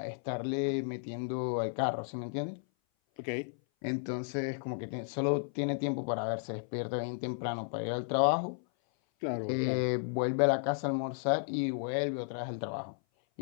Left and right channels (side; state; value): right; silent; 56 dB below the other